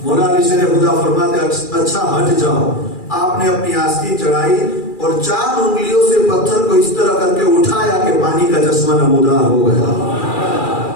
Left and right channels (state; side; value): late; right; 2.4 ms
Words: مولا علی شیر خدا فرماتے اچھا ہٹ جاؤ۔ آپ نے اپنی آستین چڑھائی اور 4 انگلیوں سے پتھر کو اس طرح کر کے اٹھایا کہ پانی کا چشمہ نمودار ہو گیا۔